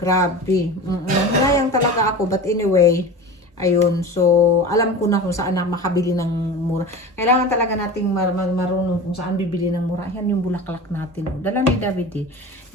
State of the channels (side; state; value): both; normal; correlation 0.32